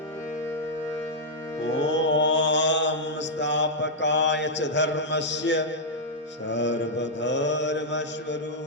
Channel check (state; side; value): normal; both; correlation -0.06